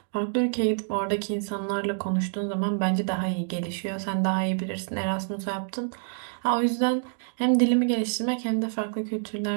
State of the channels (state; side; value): silent; left; digital silence